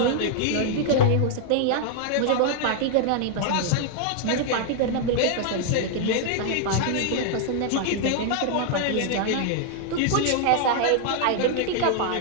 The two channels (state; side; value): different; both; correlation 0.00